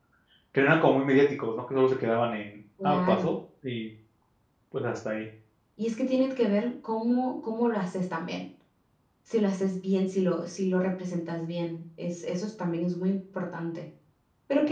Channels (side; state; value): both; identical; correlation 1.00